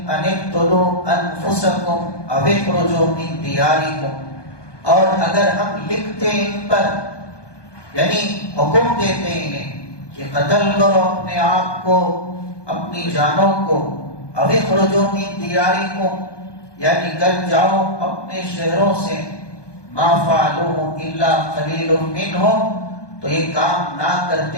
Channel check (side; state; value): right; late; 1.2 ms